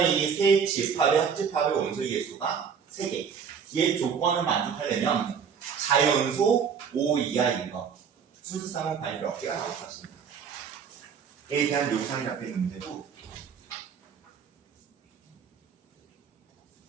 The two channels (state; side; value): quieter; left; 6.9 dB